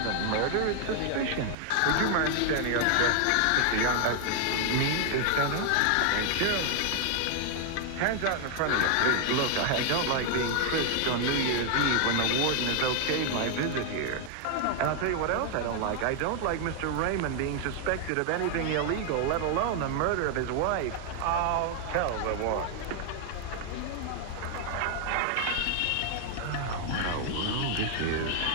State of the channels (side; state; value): both; different; correlation 0.00